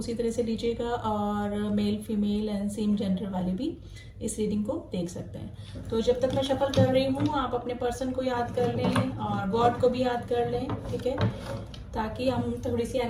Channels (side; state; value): both; identical; correlation 1.00